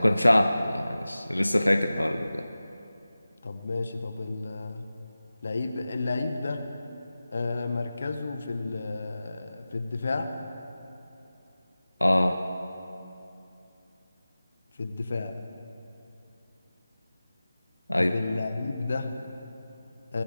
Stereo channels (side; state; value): both; inverted; correlation -0.96